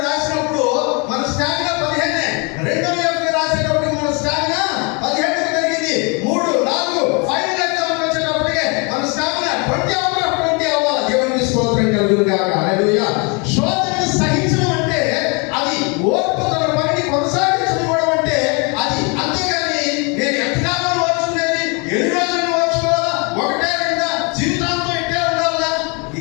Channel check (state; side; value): quieter; right; 32.3 dB